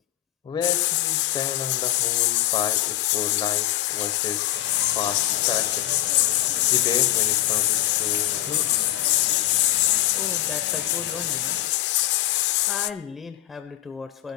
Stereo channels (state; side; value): quieter; right; 14.0 dB